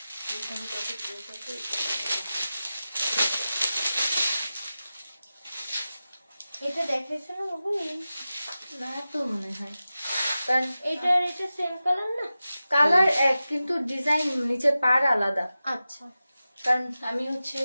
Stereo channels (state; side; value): inverted; both; correlation -0.94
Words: এটা দেখাইছে না বাবু? না তো মনে হয়, কারণ এটা সেম কালার না? কালার এক কিন্তু ডিজাইন নিচে পার আলাদা। আচ্ছা কারণ আমি হচ্ছে